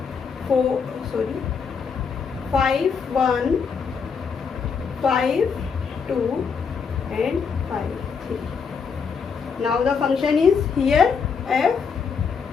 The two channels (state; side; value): quieter; right; 5.9 dB